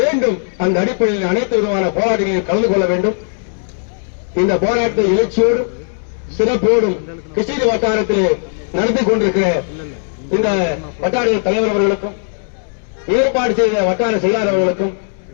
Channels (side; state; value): right; silent; digital silence